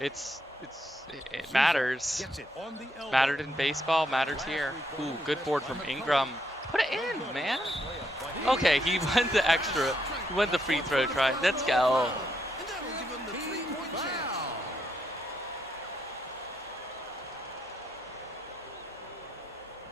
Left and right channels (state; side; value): normal; both; correlation 0.77